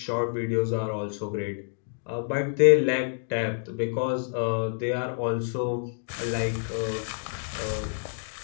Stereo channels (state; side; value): silent; right; digital silence